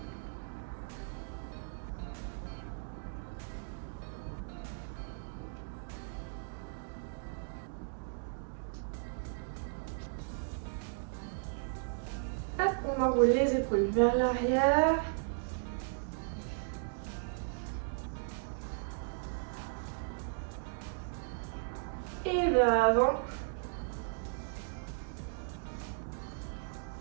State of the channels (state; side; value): silent; left; digital silence